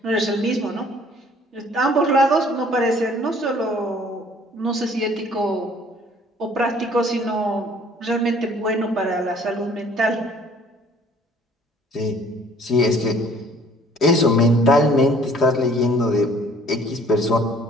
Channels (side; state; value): both; normal; correlation 0.56